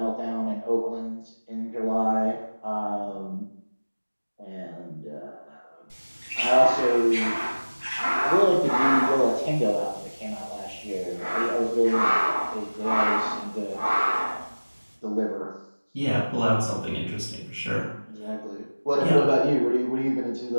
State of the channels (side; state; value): both; inverted; correlation -1.00